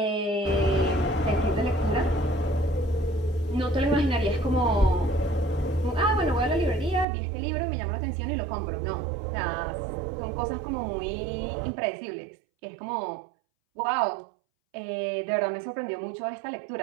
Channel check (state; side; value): drops out; left; at 7.1 s